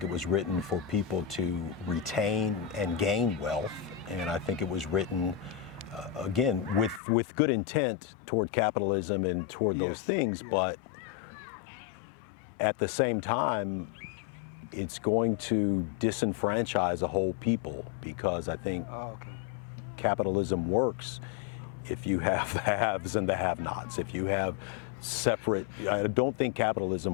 it was written for people to retain and gain wealth, and I think it was written again with good intent toward capitalism and toward those things, but at the same time it's going to disenfranchise a whole people, because I think capitalism works if you have the haves and the have-nots, if you have separate. I don't think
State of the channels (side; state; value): right; drops out; at 7.0 s